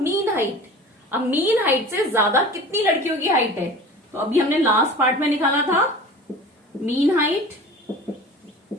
height? अब मीन हाइट से ज्यादा कितनी लड़कियों की हाइट है? तो अभी हमने लास्ट पार्ट में निकाला था मीन हाइट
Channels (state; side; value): normal; both; correlation 0.38